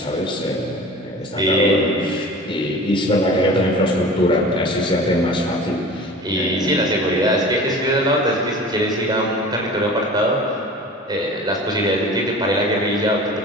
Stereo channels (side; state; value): both; normal; correlation 0.39